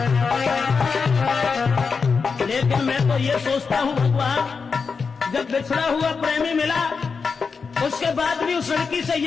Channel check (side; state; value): right; quieter; 5.2 dB